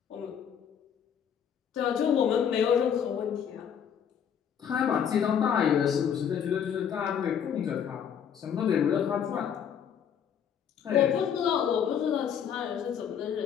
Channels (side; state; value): right; quieter; 8.2 dB